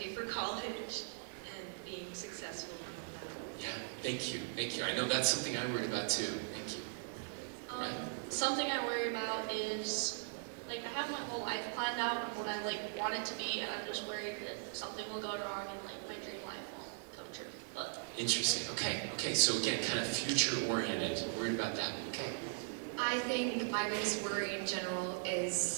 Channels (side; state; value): left; silent; 52 dB below the other